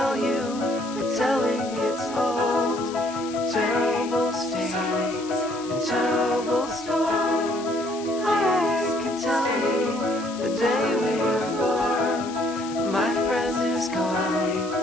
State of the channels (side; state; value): left; noise; hiss, 16 dB below the sound